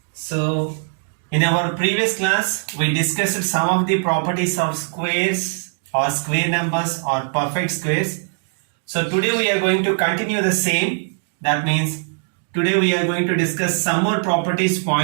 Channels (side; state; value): left; silent; digital silence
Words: So, in our previous class, we discussed some of the properties of squares or square numbers or perfect squares. So, today we are going to continue the same. That means, today we are going to discuss some more properties